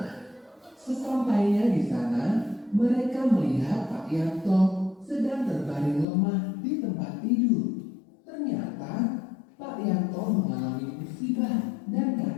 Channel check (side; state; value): right; drops out; at 6.1 s